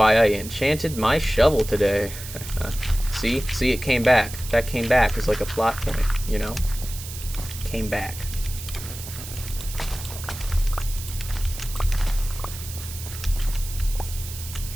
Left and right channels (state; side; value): noise; right; hiss, 11 dB below the sound